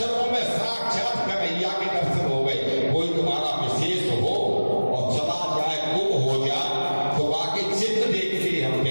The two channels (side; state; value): both; inverted; correlation -1.00